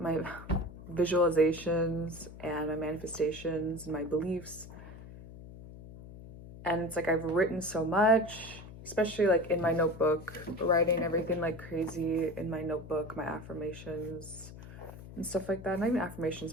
visualizations and my manifestations and my beliefs. And it's like I've written so much, especially like in my notebook, writing everything like crazy in my notebook, my affirmations and stuff like that. Not even affirmations,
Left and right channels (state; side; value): noise; left; hum, 15 dB below the sound